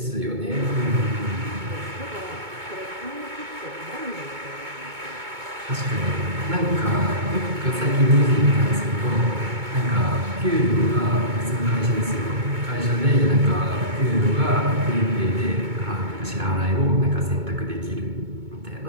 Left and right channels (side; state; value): left; late; 2.2 ms